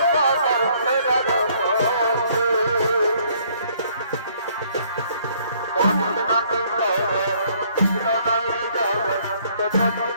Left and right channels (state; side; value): inverted; both; correlation -0.63